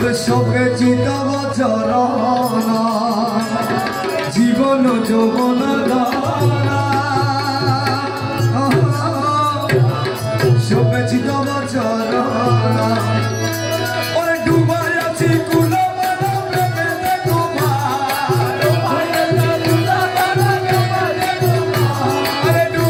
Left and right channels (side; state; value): both; identical; correlation 1.00